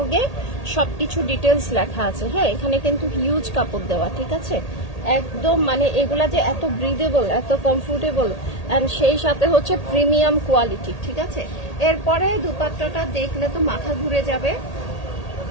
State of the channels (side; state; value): right; late; 1.8 ms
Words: সবকিছু ডিটেলস লেখা আছে। হ্যাঁ, এখানে কিন্তু হিউজ কাপড় দেওয়া, ঠিক আছে। একদম মানে এগুলা যে এত ব্রিদেবল, এত কমফোর্টেবল, অ্যান্ড সেই সাথে হচ্ছে প্রিমিয়াম কোয়ালিটি, ঠিক আছে। এরপরে দুপাট্টাটা দেখলে তো মাথা ঘুরে যাবে।